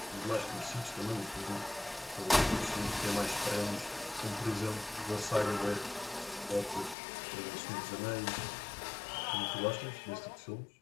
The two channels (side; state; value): right; drops out; at 7.0 s